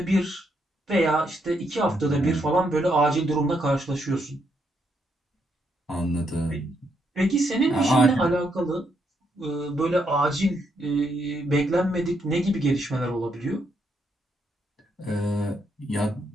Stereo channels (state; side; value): normal; both; correlation 0.77